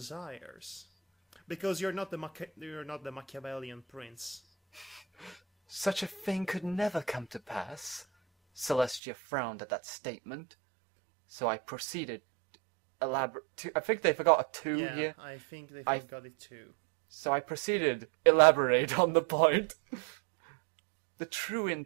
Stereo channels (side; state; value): left; drops out; at 9.0 s